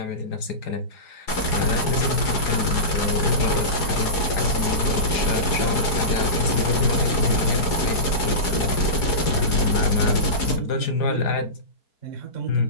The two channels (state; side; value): late; right; 4.8 ms